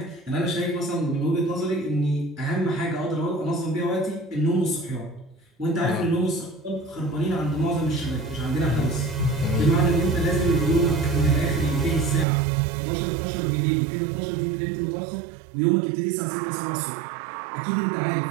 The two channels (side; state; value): left; drops out; at 12.2 s